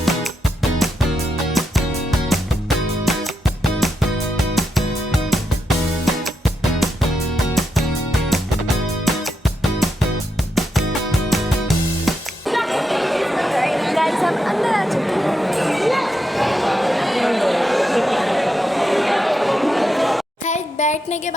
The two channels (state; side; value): normal; both; correlation 0.83